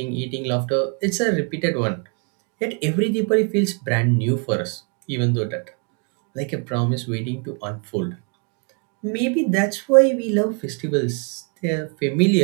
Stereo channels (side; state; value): left; quieter; 37.8 dB